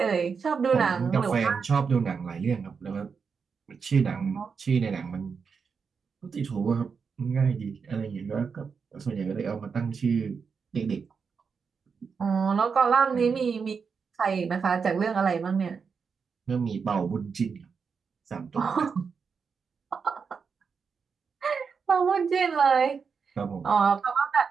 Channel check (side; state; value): left; quieter; 5.7 dB